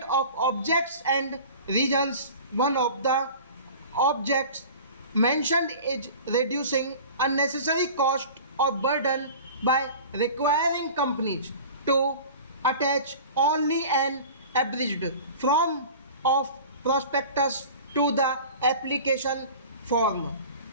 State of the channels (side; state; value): both; inverted; correlation -0.39